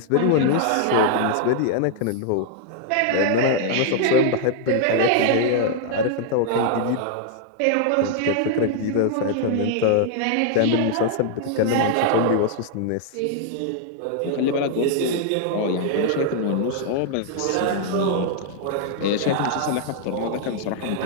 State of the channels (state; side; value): different; both; correlation -0.01